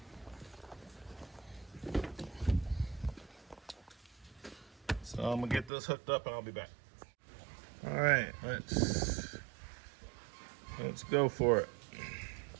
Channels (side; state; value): left; drops out; at 5.7 s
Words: So I'm gonna get this hooked up and I'll be back. All right, let's go for it.